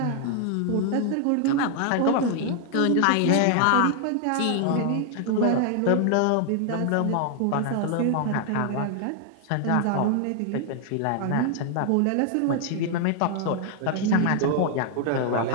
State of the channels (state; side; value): different; both; correlation 0.00